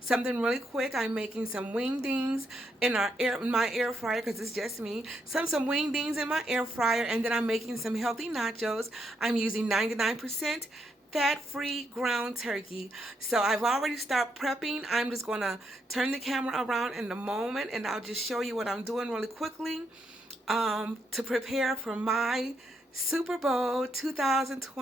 Something really quick. I'm making some wingdings in my air fryer because it's just me. Some wingdings in my air fryer, and then I'm making some healthy nachos. I'm using 99% fat-free ground turkey. So I've already started prepping. I'm just going to turn the camera around in a moment, and I'll just show you what I'm doing really quickly to prepare for my Super Bowl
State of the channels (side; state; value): both; normal; correlation 0.78